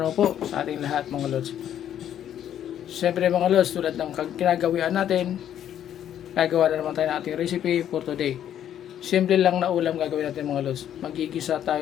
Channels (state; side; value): quieter; right; 10.4 dB